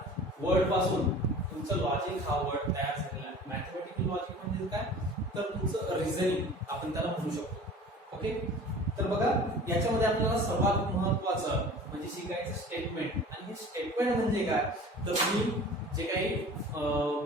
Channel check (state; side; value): normal; both; correlation 0.42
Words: वर्ड पासून तुमचं लॉजिक हा वर्ड तयार झालेला आहे. मॅथमॅटिकल लॉजिक म्हणजे काय, तर तुमचं रिझनिंग आपण त्याला म्हणू शकतो. ओके, तर बघा याच्यामध्ये आपल्याला सर्वात महत्वाचं म्हणजे शिकायचं स्टेटमेंट. आणि हे स्टेटमेंट म्हणजे काय, तर तुम्ही जे काही